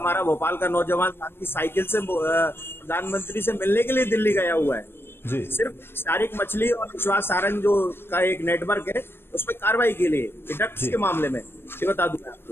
भोपाल का नौजवान साथी साइकिल से प्रधानमंत्री से मिलने के लिए दिल्ली गया हुआ है जी। सिर्फ शारिक मछली और विश्वास सारंग जो का एक नेटवर्क है उसमें कार्रवाई के लिए ड्रग्स के मामले में, ये बता दूं मैं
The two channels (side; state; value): right; late; 0.11 ms